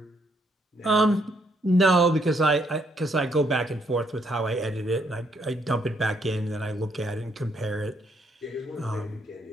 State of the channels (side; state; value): both; normal; correlation 0.72